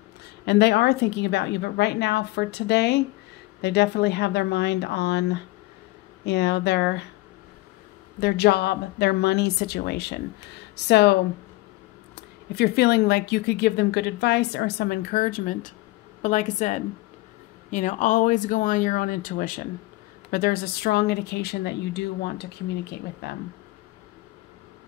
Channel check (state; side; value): quieter; right; 19.7 dB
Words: And they are thinking about you. But right now, for today, they definitely have their mind on, you know, their job, their money situation. So if you're feeling like you could give them good advice or some encouragement, but like I said, you know, always go on your own intuition. But there's a strong indication that you do want to communicate with them.